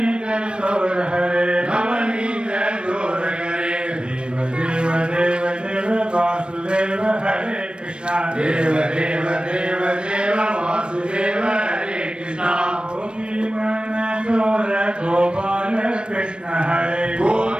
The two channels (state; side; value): late; left; 0.056 ms